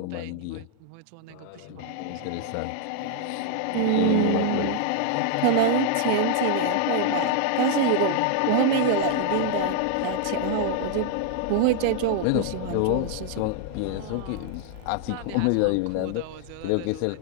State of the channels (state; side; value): different; both; correlation 0.00